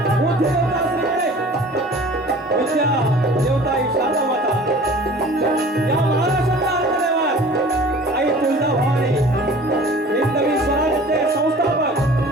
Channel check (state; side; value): normal; both; correlation 0.45